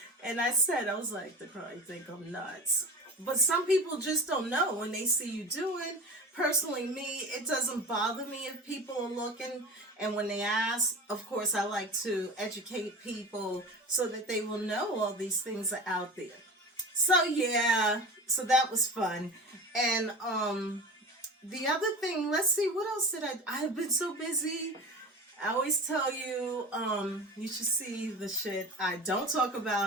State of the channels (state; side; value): normal; both; correlation 0.32